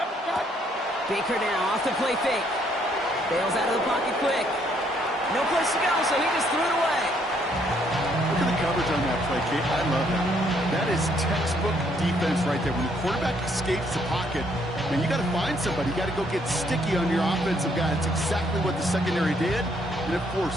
Baker now off the play fake. Bails out of the pocket quick. No place to go, so he just threw it away. Look at the coverage on that play, Kate. I love that. That is textbook defense right there. When the quarterback escapes the pocket, man, you got to find somebody. You got to go get sticky on your offensive guy. It's exactly what the secondary did, and it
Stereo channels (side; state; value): both; normal; correlation 0.69